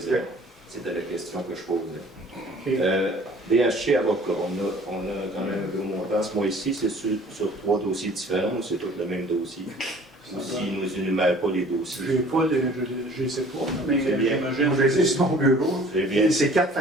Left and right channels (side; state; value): both; normal; correlation 0.51